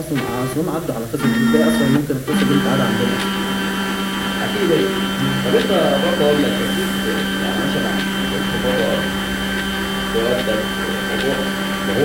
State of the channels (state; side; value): identical; both; correlation 1.00